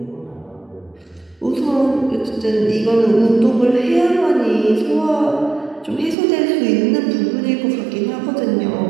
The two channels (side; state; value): left; drops out; at 6.2 s